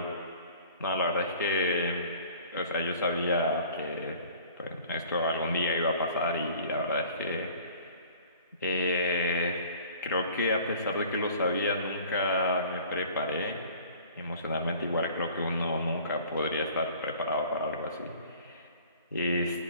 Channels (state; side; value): inverted; both; correlation -0.49